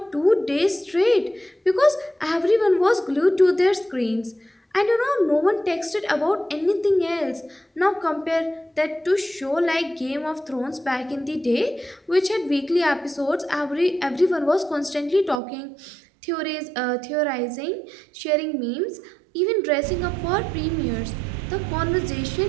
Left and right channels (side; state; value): left; drops out; at 15.4 s